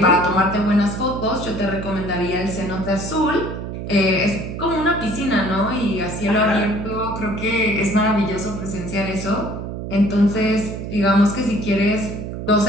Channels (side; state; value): right; noise; hum, 7 dB below the sound